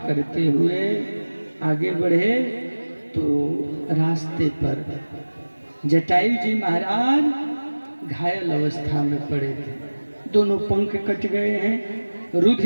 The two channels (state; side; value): inverted; both; correlation -1.00